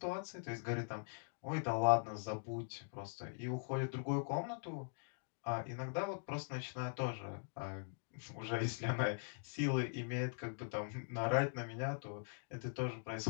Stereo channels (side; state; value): right; silent; digital silence